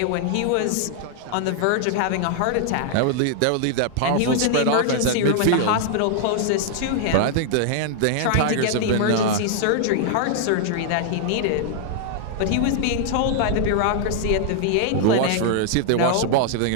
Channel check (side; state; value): both; different; correlation 0.00